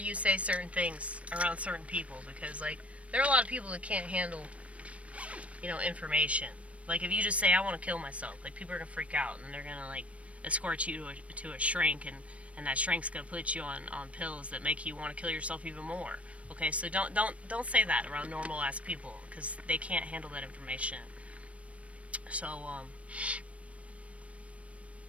say certain things around certain people, because like there are a lot of people that can't handle, you know, information. Like if you just say I want to kill myself, like people are gonna freak out and they're gonna like escort you to a shrink, and that shrink's gonna put you on pills that make you want to kill yourself even more. Okay, so don't say that around normal ass people because they can't handle that information. So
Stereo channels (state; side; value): late; left; 0.064 ms